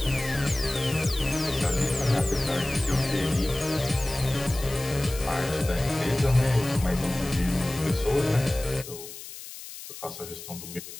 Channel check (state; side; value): noise; left; hiss, 13 dB below the sound